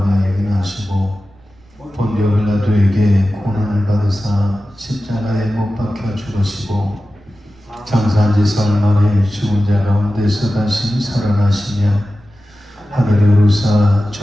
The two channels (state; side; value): noise; right; rumble, 29 dB below the sound